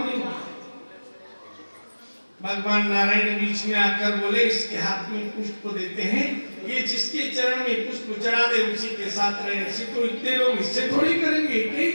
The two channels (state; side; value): inverted; both; correlation -1.00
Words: नहीं। भगवान नारायण बीच में आकर बोले इसके हाथ में पुष्प देते हैं, ये जिसके चरण में पुष्प चढ़ा दे उसी के साथ रहे। ऐसे तो इतने लोग इससे थोड़ी करेंगे, यही